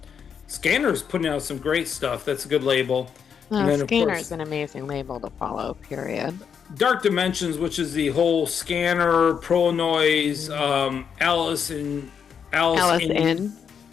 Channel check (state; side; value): quieter; right; 7.2 dB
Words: Scanner's putting out some great stuff. That's a good label. Scanner's an amazing label to follow, period. Dark Dimensions, which is the whole Scanner, Pro Noise, Alice in